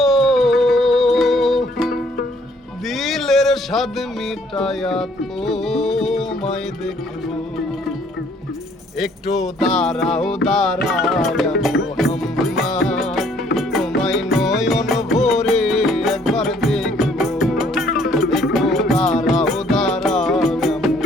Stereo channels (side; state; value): both; normal; correlation 0.62